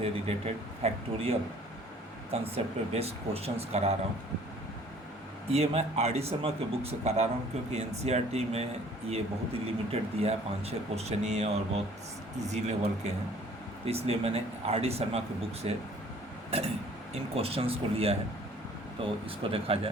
रिलेटेड फैक्टोरियल कंसेप्ट पे बेस्ड क्वेश्चंस करा रहा हूँ। ये मैं आर.डी. शर्मा के बुक से करा रहा हूँ क्योंकि एनसीईआरटी में ये बहुत ही लिमिटेड दिया है, 5-6 क्वेश्चन ही है और बहुत इजी लेवल के हैं, तो इसलिए मैंने आर.डी. शर्मा के बुक से इन क्वेश्चंस को लिया है। तो इसको देखा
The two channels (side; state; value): both; normal; correlation 0.54